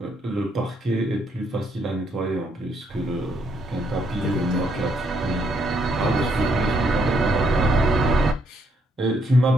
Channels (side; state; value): both; normal; correlation 0.73